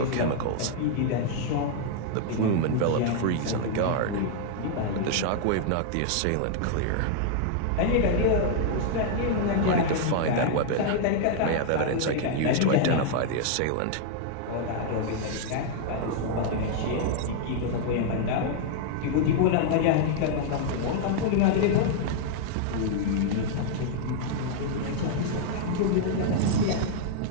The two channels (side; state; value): both; different; correlation -0.01